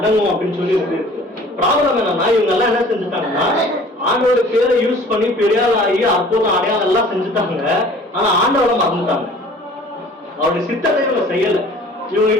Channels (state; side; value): normal; both; correlation 0.49